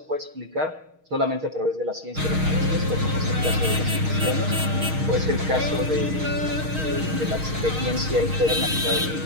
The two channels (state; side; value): late; left; 6.4 ms